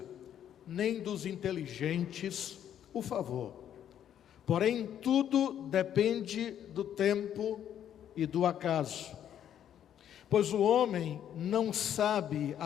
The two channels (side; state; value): right; quieter; 10.0 dB